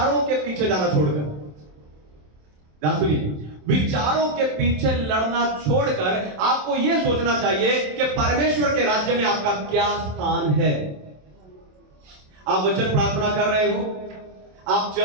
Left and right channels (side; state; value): left; late; 27 ms